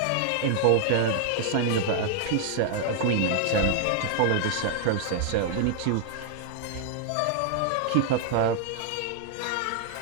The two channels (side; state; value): both; different; correlation 0.00